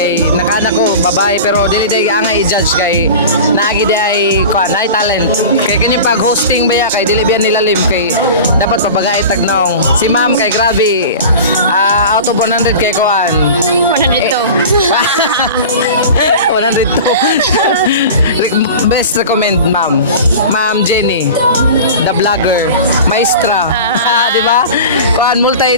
nakana ko babae pero dili day ang i-judge kay naagi day kuan ay talent. Kay kanya pag hosting baya kay dili biyan nilalim kay dapat pabagay tagnaong. Si ma'am kay grabe out of 100 kay kuan. 102. 102. Best recommend ma'am. Ma'am Jenny, the vlogger, maestra. Di ba? Kuan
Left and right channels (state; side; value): inverted; both; correlation -0.35